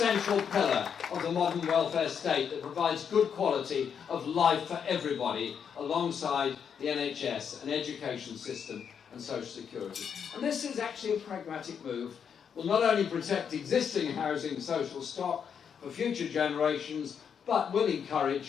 pillar of the modern welfare state that provides good quality of life for everybody alongside the NHS, an education system and social security. And this is actually a pragmatic move. Will not only protect existing housing social stock for future generations, but will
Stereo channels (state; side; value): quieter; right; 7.4 dB